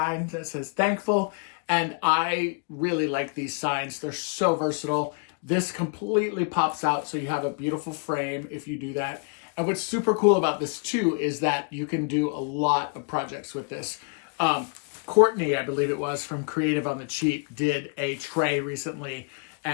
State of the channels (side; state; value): right; quieter; 38.3 dB